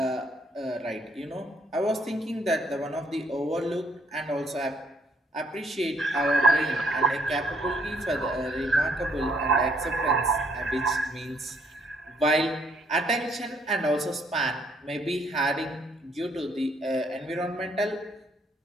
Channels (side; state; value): both; normal; correlation 0.67